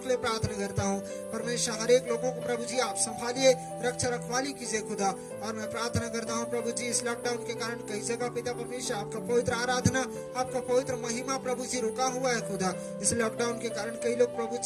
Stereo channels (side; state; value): both; identical; correlation 1.00